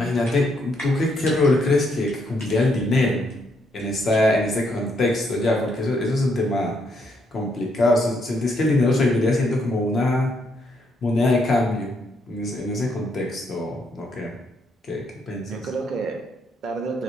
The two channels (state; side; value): normal; both; correlation 0.75